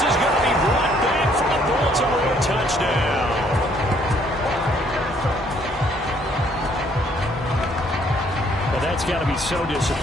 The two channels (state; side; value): normal; both; correlation 0.65